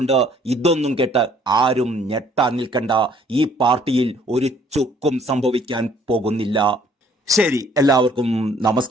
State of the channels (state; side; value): normal; both; correlation 0.60